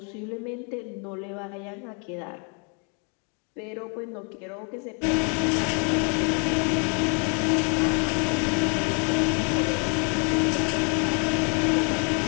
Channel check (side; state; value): right; quieter; 38.2 dB